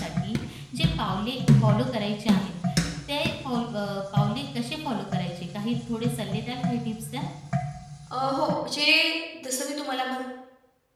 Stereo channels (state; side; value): identical; both; correlation 1.00